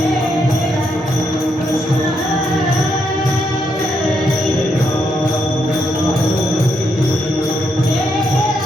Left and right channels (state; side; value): normal; both; correlation 0.78